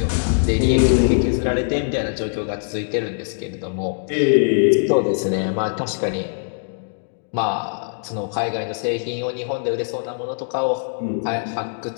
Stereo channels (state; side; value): silent; right; digital silence